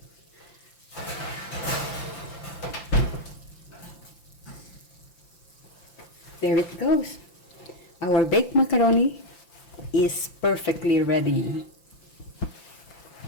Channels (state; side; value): late; right; 5.8 ms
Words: There it goes. Our baked macaroni is perfectly ready.